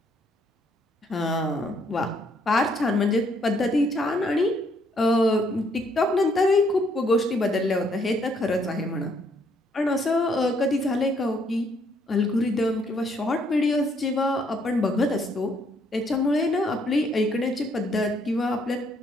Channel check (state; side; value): normal; both; correlation 0.69